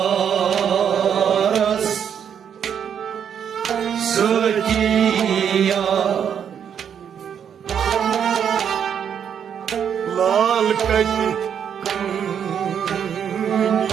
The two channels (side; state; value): left; quieter; 8.2 dB